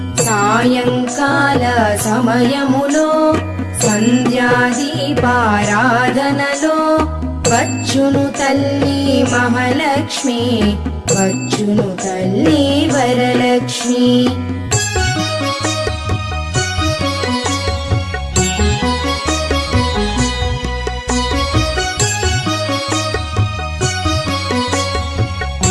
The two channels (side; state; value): both; identical; correlation 1.00